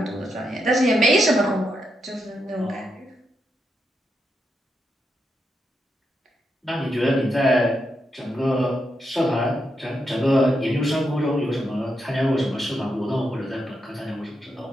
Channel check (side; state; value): both; normal; correlation 0.83